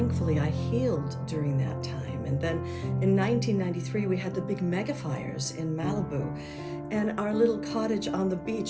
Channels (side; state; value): both; identical; correlation 1.00